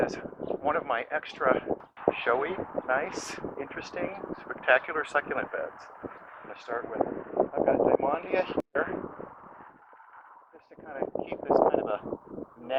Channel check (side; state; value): both; identical; correlation 1.00